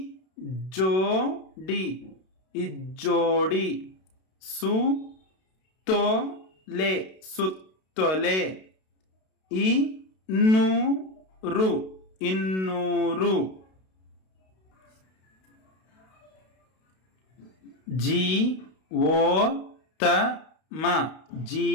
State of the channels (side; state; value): right; late; 32 ms